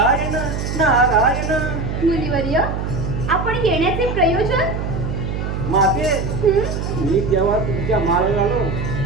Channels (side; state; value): right; noise; hum, 3 dB below the sound